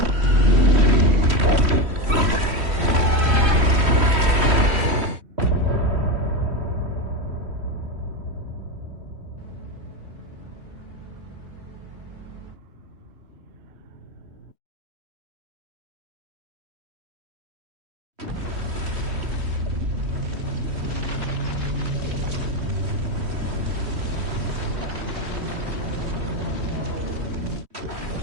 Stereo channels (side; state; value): left; late; 3.1 ms